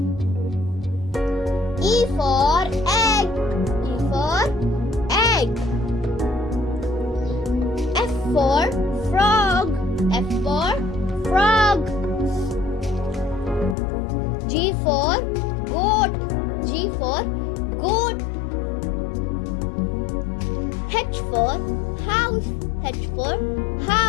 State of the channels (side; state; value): right; drops out; at 13.8 s